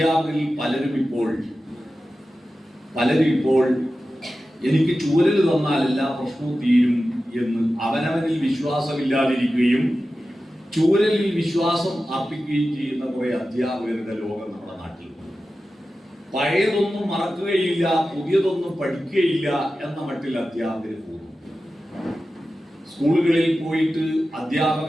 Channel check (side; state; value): both; normal; correlation 0.93